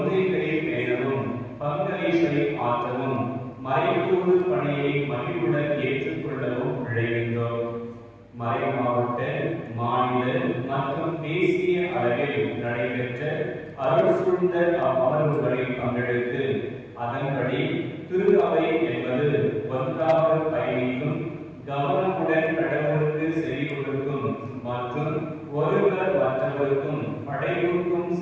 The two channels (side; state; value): both; identical; correlation 1.00